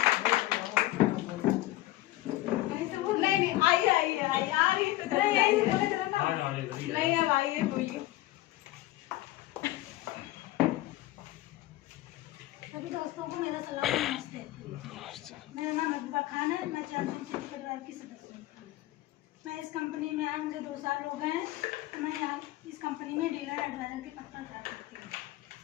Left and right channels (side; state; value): right; quieter; 16.7 dB